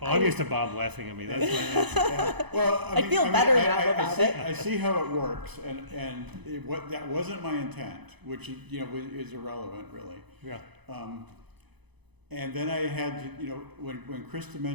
used to Bob laughing at me. That's why. Yeah. Well, I feel better now about it. I see how it works, and that wasn't my intent, which is irrelevant, really. Yeah. And then I had to, when Krista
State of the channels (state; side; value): late; left; 0.99 ms